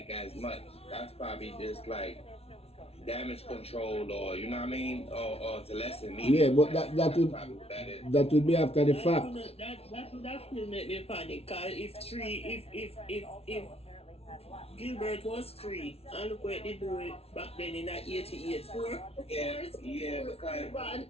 as much. That's probably just like damage control, or you know what I mean, or to lessen media. Yeah, but that would be after the fact. That will make me panic. Cause if Gilbert was 3, and look what they do it back then in that 88 4. Yeah, because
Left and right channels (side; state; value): right; late; 0.30 ms